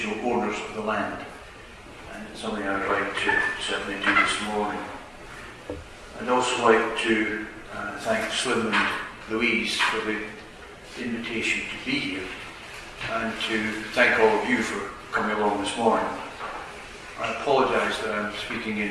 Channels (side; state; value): both; identical; correlation 1.00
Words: owners of the land. And it's something I'd like to certainly do this morning. I'd also like to thank Slim and Louise for the invitation to be here, and to thank all of you for coming along this morning. I apologise that I'm speaking